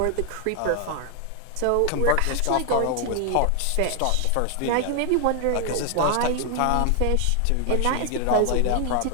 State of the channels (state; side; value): different; both; correlation 0.00